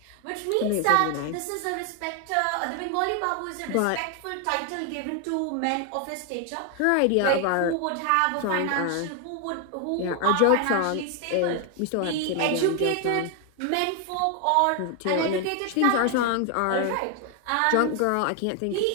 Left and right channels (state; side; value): different; both; correlation 0.01